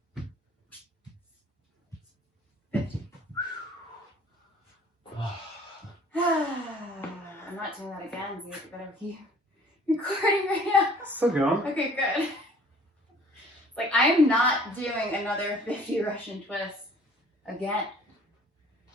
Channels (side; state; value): both; normal; correlation 0.53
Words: 50. I'm not doing that again, Zeke. You better keep recording right now. Still going. Okay, good. It's like, I'm not doing another 50 Russian twists again.